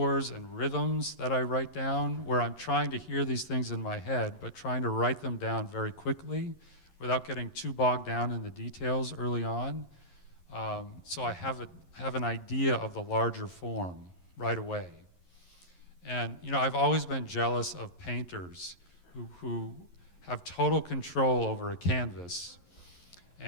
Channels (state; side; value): late; right; 11 ms